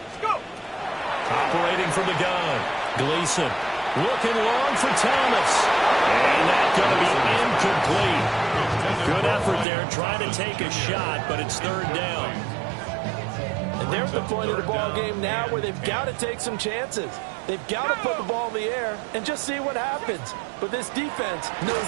Operating from the gun. Gleason looking long for Thomas. And that's going to be incomplete. Good effort there trying to take a shot, but it's 3rd down. And they're at the point of the ball game now where they've got to take some chances. They've got to put the ball in the air and just see what happens. But this defense knows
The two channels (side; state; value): left; drops out; at 9.7 s